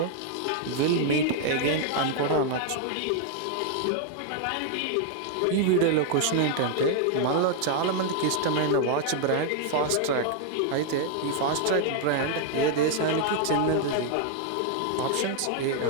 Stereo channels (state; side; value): different; both; correlation 0.00